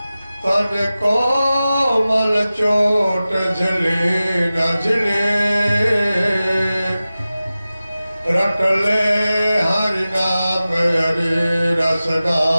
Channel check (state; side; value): inverted; both; correlation -0.96